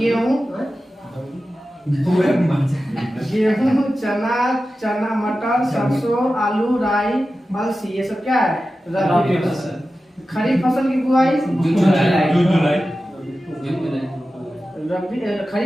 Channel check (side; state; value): both; normal; correlation 0.93